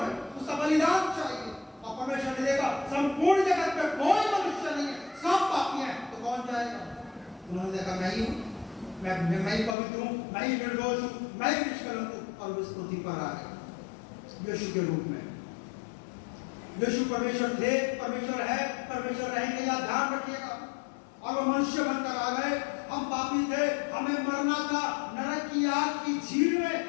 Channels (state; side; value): drops out; right; at 9.8 s